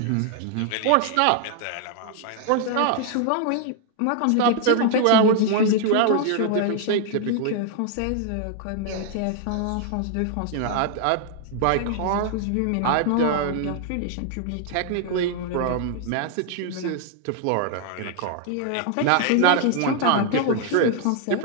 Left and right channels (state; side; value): different; both; correlation 0.00